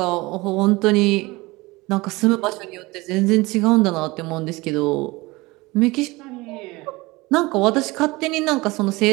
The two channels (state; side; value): quieter; left; 22.2 dB